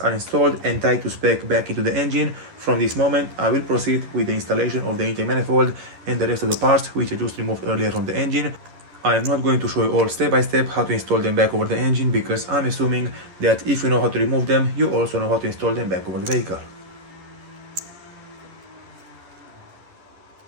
are installed and tied to spec back into the engine. From this moment I will proceed with the installation of the intake manifold and the rest of the parts which I just removed earlier from the engine. I am not going to show you all step by step how to install them back over the engine, because I'm assuming that if you know how to remove them, you also know how to install them back over the vehicle.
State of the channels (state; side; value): late; left; 11 ms